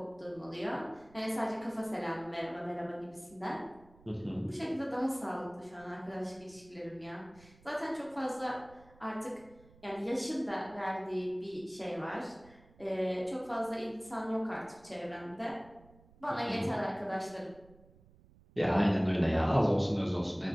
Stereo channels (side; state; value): right; noise; rumble, 25 dB below the sound